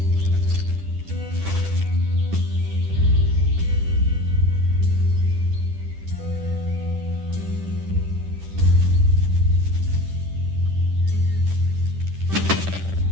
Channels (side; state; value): left; late; 10 ms